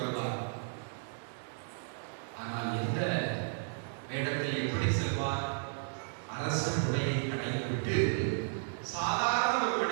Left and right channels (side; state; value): left; silent; digital silence